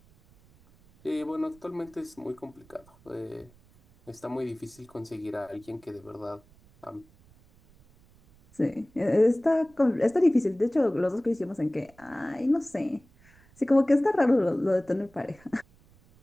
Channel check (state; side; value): noise; right; rumble, 28 dB below the sound